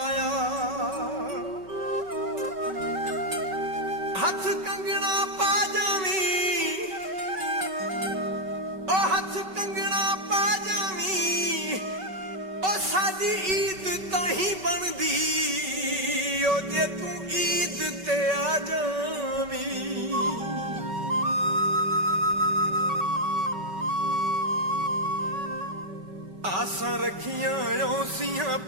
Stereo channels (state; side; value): late; left; 5.3 ms